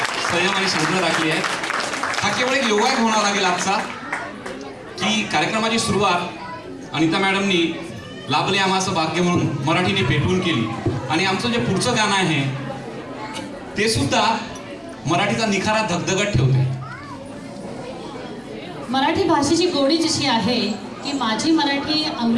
संयम आणि शांतता राखली आहे. हा केवळ एक योगायोग होणार लागेल आजचा की कार्यक्रमाची सुरुवात अनिता मॅडमनी लाभले आम्हाचं भाग्य म्हणून मराठीने पेटवून केली आणि आमचं जे पुढचं गाणं आहे ते सुद्धा मराठीचा निखारा धगधगत ठेवते. मराठी भाषेची गोडी जशी आहे की माझी मराठी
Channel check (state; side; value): identical; both; correlation 1.00